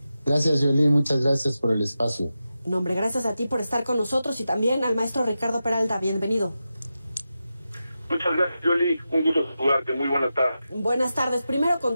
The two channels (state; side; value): inverted; both; correlation -0.91